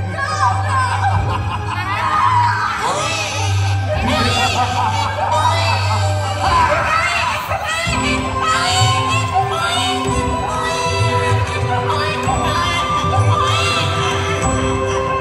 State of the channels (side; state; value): both; identical; correlation 1.00